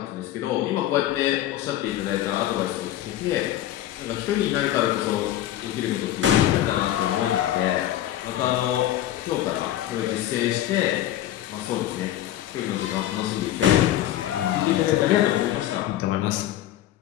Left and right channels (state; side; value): quieter; right; 12.9 dB